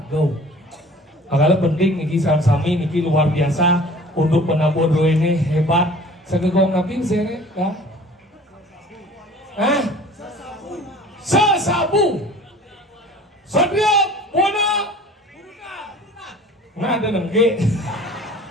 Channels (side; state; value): both; normal; correlation 0.46